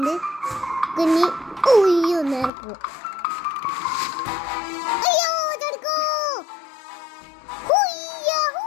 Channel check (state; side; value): drops out; right; at 2.5 s